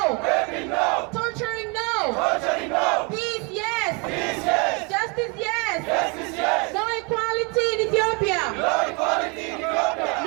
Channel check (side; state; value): left; quieter; 31.1 dB